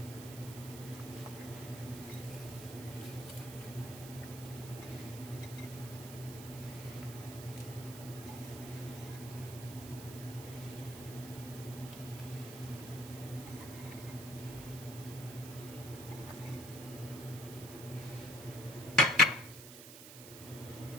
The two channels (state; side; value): noise; right; hiss, 12 dB below the sound